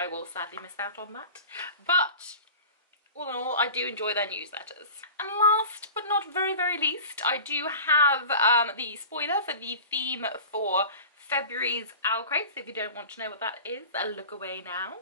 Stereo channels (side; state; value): both; inverted; correlation -0.37